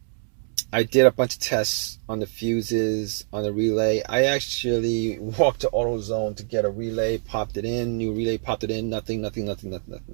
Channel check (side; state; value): left; silent; digital silence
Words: I did a bunch of tests on the fuses, on the relay. I actually walked to AutoZone to get a relay, popped it in, new relay, popped it in, nothing.